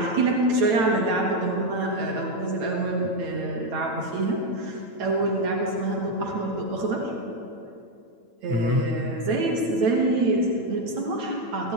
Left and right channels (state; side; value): late; left; 9.0 ms